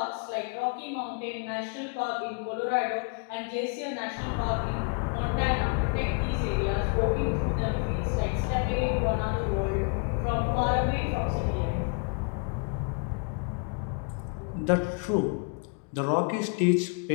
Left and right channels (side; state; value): right; quieter; 38.1 dB